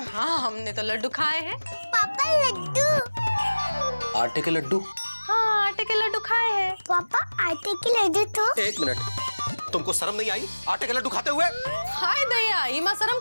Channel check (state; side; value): inverted; both; correlation -1.00